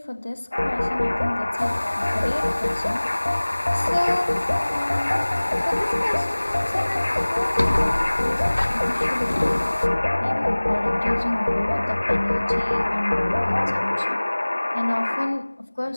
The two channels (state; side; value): inverted; both; correlation -1.00